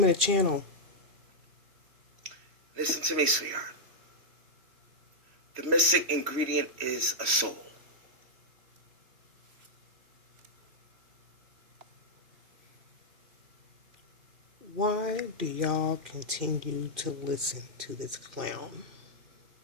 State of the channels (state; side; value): late; left; 3.1 ms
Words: of the channel? Listen to me, sweetheart. The missing ingredient is a soul. Why do y'all continue to listen to this clown?